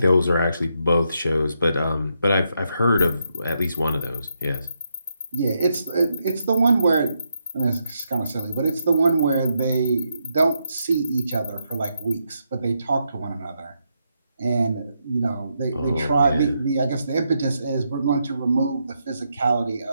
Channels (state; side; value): inverted; both; correlation -0.81